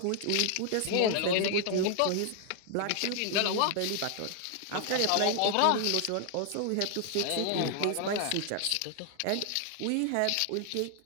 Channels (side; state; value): both; different; correlation 0.00